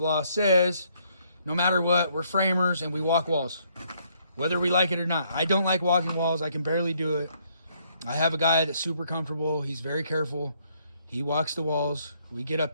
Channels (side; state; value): both; inverted; correlation -0.70